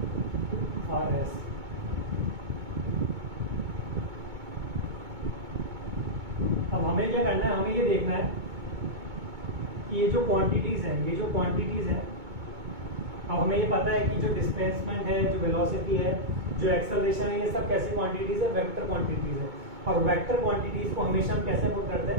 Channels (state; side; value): late; left; 2.2 ms